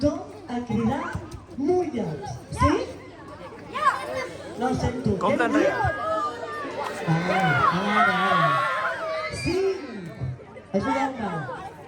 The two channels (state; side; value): identical; both; correlation 1.00